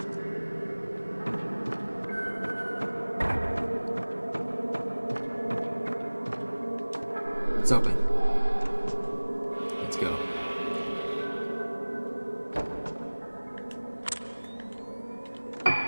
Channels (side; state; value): both; inverted; correlation -1.00